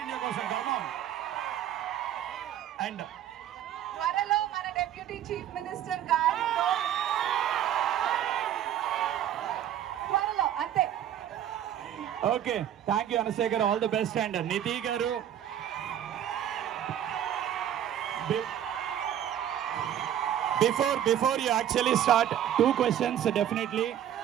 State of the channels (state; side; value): quieter; left; 10.7 dB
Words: ఇండియా కోసం గర్వం. అండ్ త్వరలో మన డెప్యూటీ చీఫ్ మినిస్టర్ గారితో త్వరలో అంతే. ఓకే, థ్యాంక్ యూ అనసూయ గారు, ఆల్ ది బెస్ట్. అండ్ నిధి గారు, before you actually start, 2 questions definitely.